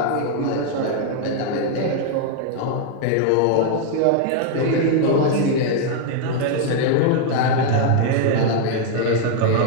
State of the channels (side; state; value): both; different; correlation 0.00